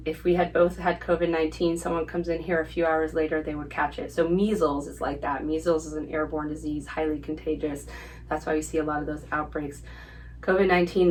if we had both had COVID-19, someone comes in here a few hours later, they would catch it. So measles is like that. Measles is an airborne disease, highly contagious. That's why we see a lot of those outbreaks.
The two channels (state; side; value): identical; both; correlation 1.00